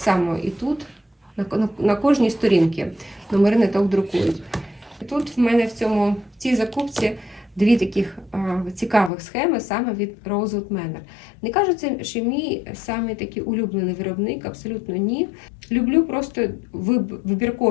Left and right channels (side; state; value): right; drops out; at 9.1 s